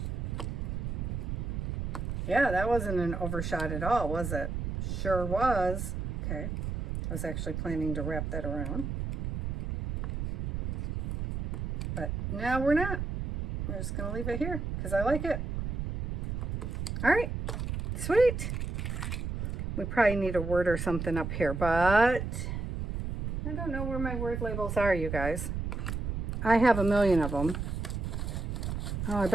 Yeah, that wasn't an overshot at all, was it? Sure was. Okay, I was actually planning to wrap that around. But now we're not. We're just going to leave it here because I like it. All right, sweet. We probably need a word or something up here, but I don't know where my word labels are, you guys. I have a million of them. Oh, I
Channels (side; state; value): right; noise; rumble, 3 dB below the sound